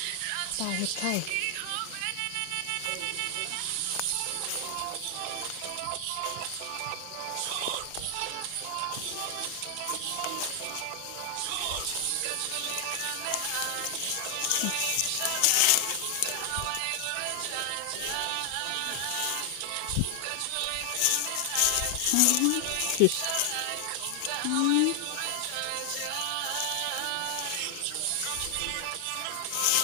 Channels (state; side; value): different; both; correlation 0.00